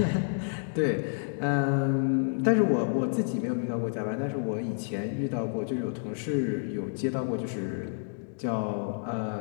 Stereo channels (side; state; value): right; silent; digital silence